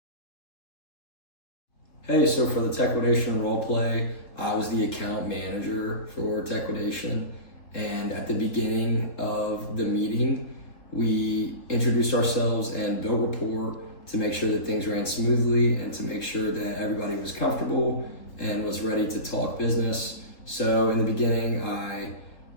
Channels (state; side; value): late; right; 3.7 ms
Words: Hey, so for the Techquidation roleplay, I was the account manager for Techquidation, and at the beginning of the meeting, we introduced ourselves and built rapport to make sure that things ran smoothly and to make sure that everybody was comfortable and was ready to talk business. So in the beginning, I